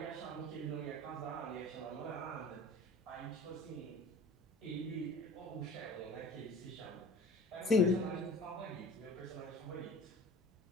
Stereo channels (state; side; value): normal; both; correlation 0.42